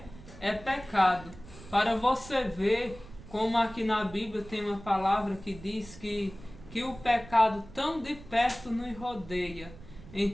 é pecado. Para você ver como aqui na Bíblia tem uma palavra que diz que o pecado tão de perto nos rodeia.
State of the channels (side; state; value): right; noise; rumble, 17 dB below the sound